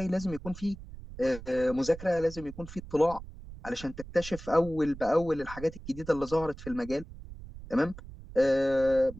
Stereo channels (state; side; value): noise; right; rumble, 14 dB below the sound